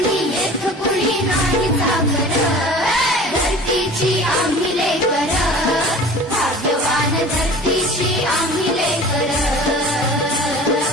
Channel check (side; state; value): both; normal; correlation 0.41